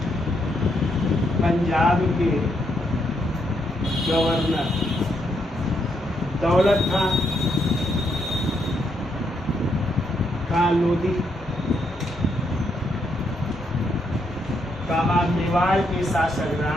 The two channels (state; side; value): normal; both; correlation 0.77